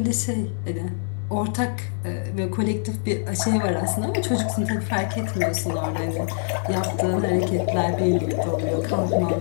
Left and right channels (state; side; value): silent; right; digital silence